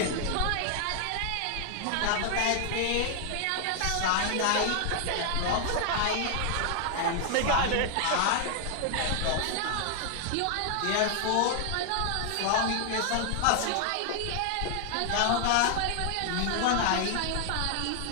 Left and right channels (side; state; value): both; different; correlation 0.00